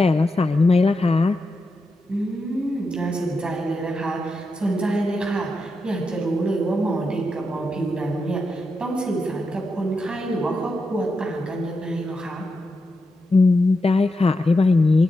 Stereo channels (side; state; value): both; normal; correlation 0.87